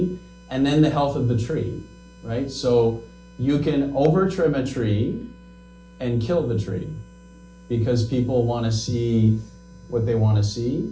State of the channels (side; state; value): both; identical; correlation 1.00